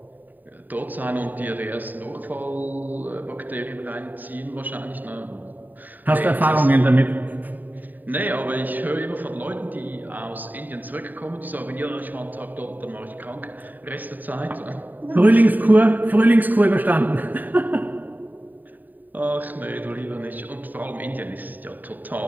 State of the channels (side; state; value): left; late; 0.087 ms